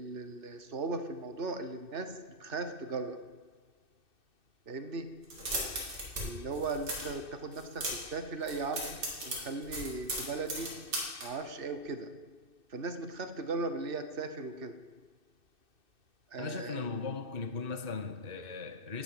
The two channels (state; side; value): late; left; 2.6 ms